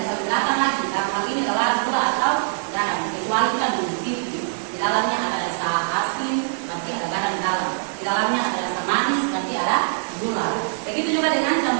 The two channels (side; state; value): left; silent; digital silence